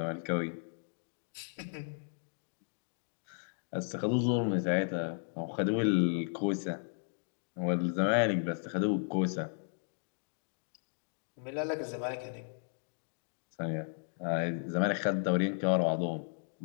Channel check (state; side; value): silent; right; digital silence